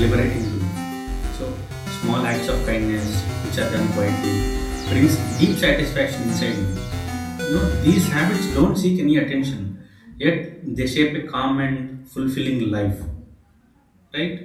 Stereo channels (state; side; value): identical; both; correlation 1.00